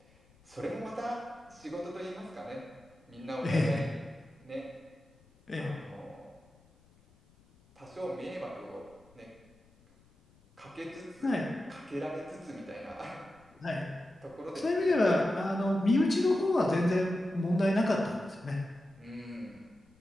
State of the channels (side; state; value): left; noise; rumble, 29 dB below the sound